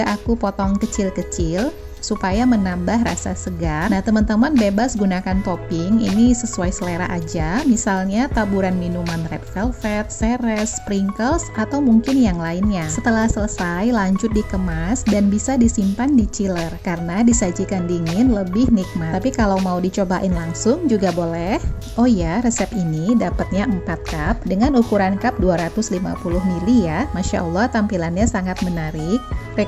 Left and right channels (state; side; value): identical; both; correlation 1.00